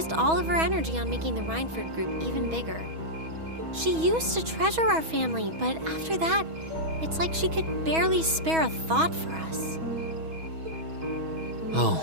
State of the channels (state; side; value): late; left; 6.2 ms